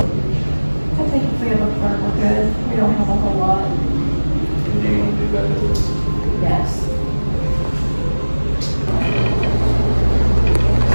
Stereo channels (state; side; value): inverted; both; correlation -1.00